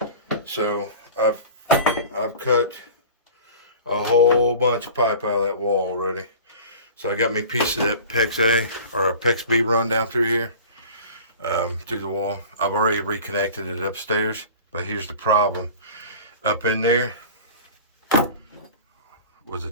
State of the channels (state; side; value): inverted; both; correlation -0.39